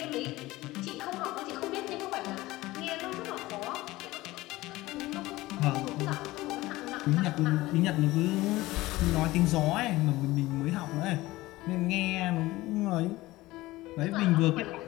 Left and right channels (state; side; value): quieter; right; 18.6 dB